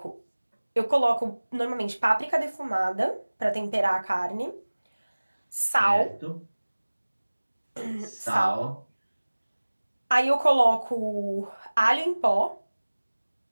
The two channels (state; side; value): inverted; both; correlation -1.00